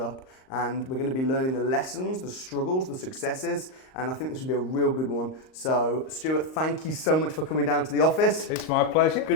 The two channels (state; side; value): late; right; 38 ms